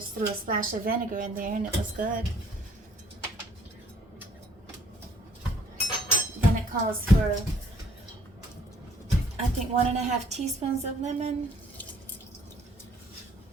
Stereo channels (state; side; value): normal; both; correlation 0.60